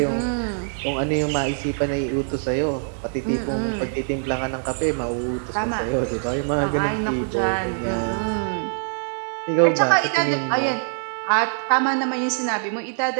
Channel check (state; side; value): silent; left; digital silence